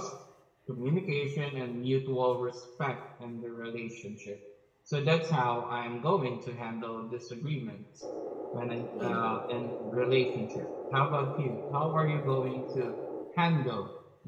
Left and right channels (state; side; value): identical; both; correlation 1.00